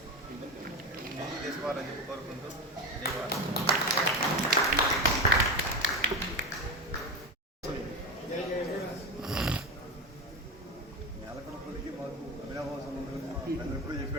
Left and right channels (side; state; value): both; normal; correlation 0.20